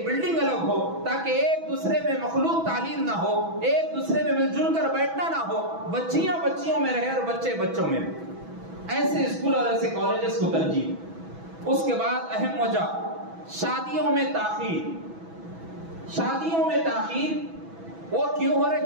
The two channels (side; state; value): left; late; 6.1 ms